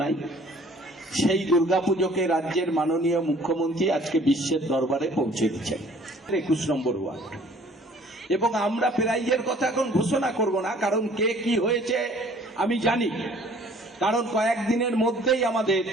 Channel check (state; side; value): normal; both; correlation 0.55